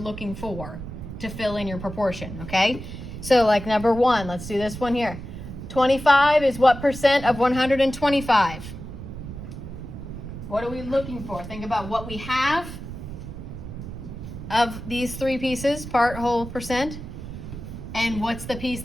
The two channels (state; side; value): noise; right; rumble, 10 dB below the sound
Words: for to fill in your proportion, okay? So like number 1, let's do this one here. 25 is what percent of 125? What are we looking for? Think about what we have of these 3 pieces, part, whole, percent, and what's the piece